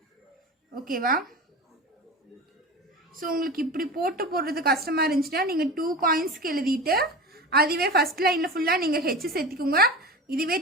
ஓகேவா? ஸோ உங்களுக்கு இப்படி போடுறது கஷ்டமாக இருந்துச்சுன்னா நீங்கள் 2 காயின்ஸ்க்கு எழுதிட்டு அதுவே ஃபஸ்ட் லைனில் ஃபுல்லாக நீங்கள் ஹெச் சேர்த்திக்கோங்க. இதுவே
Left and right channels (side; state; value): both; normal; correlation 0.31